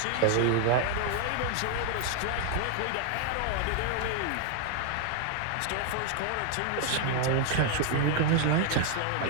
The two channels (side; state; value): both; different; correlation 0.00